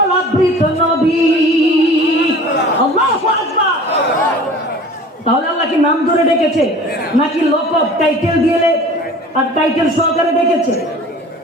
আবৃত নবী। আল্লাহু আকবার। তাহলে আল্লাহ কি নাম ধরে ডেকেছে নাকি লকব টাইটেল দিয়ে আর টাইটেল সহকারে ডেকেছে?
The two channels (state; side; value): normal; both; correlation 0.43